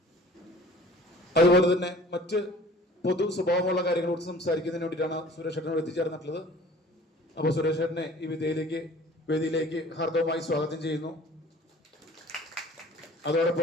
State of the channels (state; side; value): normal; both; correlation 0.49